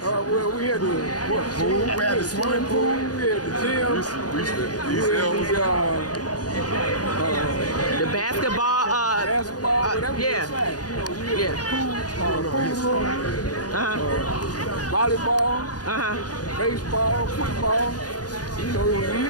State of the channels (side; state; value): right; late; 0.69 ms